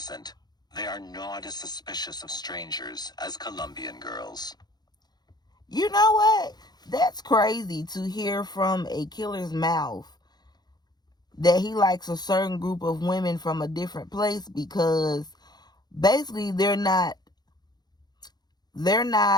They are not as suspicious of strangers as Colombian girls. You know what? That's crazy to hear from a killer's mouth that he likes a certain group of women from a different place, because basically they're not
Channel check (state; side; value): late; right; 0.20 ms